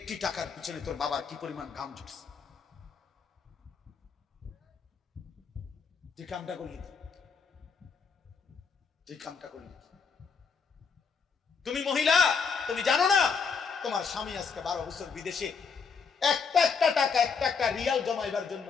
টাকার পিছনে তোর বাবার কি পরিমাণ ঘাম ঝরছে। তুই কামটা করলি, তুই কামটা করলি। তুমি মহিলা, তুমি জানো না তোমার স্বামী আজকে 12 বছর বিদেশে একটা টাকা একটা রিয়াল জমাইবার জন্য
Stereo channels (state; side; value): quieter; right; 5.7 dB